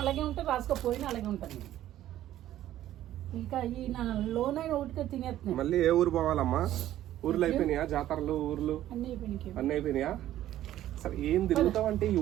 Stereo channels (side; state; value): left; quieter; 13.1 dB